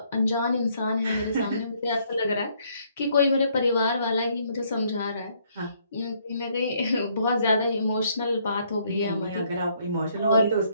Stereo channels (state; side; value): inverted; both; correlation -0.68